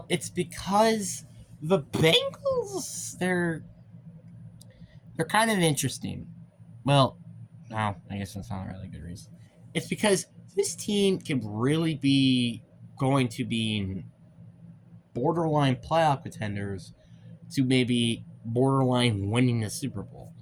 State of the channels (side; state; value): both; identical; correlation 1.00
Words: it's because the Bengals, they're kind of interesting. Well, no, I guess that's not a really good reason. It's because this team can really be going to be borderline playoff contenders to maybe borderline winning the Super Bowl.